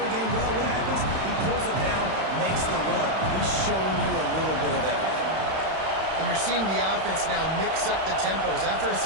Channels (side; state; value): left; late; 31 ms